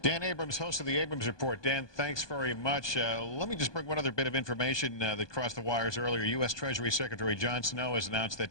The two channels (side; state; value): right; late; 1.2 ms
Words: Dan Abrams, host of the Abrams Report. Dan, thanks very much. Let me just bring one other bit of information that crossed the wires earlier. U.S. Treasury Secretary John Snow has announced